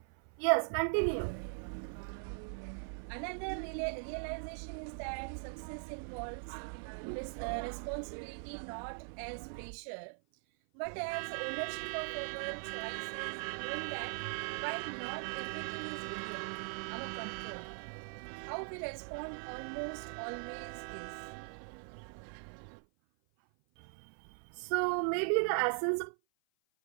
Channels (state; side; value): silent; left; 51 dB below the other